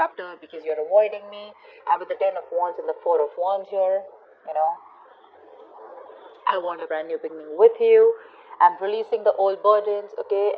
because you're avoiding me. I'm with the 10 of Wands and the 4 of Wands here, you know. I want a brand new beginning with you. I'm releasing the old burdens, okay?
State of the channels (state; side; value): identical; both; correlation 1.00